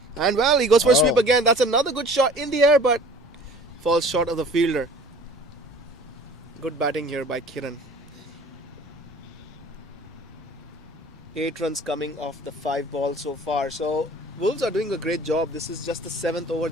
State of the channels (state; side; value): noise; right; rumble, 27 dB below the sound